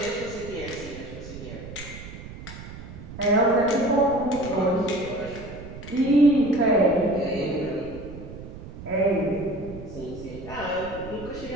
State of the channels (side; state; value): right; noise; rumble, 13 dB below the sound